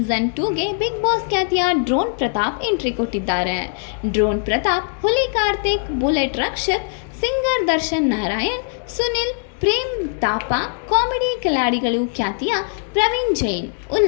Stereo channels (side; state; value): right; silent; 65 dB below the other